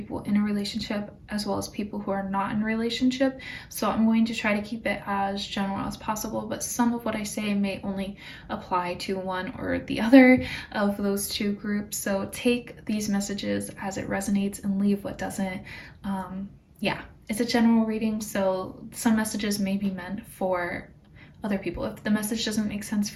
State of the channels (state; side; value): identical; both; correlation 1.00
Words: in a relationship as well as people who are not in a relationship. So I'm going to try to keep it as general as possible, but some of what I say may only apply to one or the other of those two groups. So take these messages as it resonates and leave what doesn't. Yeah, it's a general reading, so some messages may be meant for other people. If the message doesn't make sense